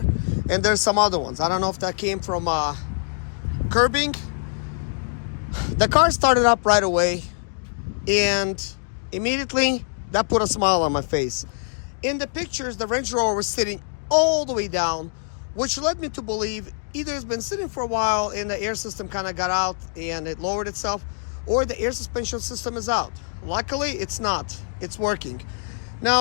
and there's some other ones. I don't know if that came from curbing. The car started up right away, and immediately that put a smile on my face. In the pictures, the Range Rover was sitting all the way down, which led me to believe either it's been sitting for a while and the air system kind of got out and it lowered itself, or the air suspension system is out. Luckily, it's not. It's working.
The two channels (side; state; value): right; silent; digital silence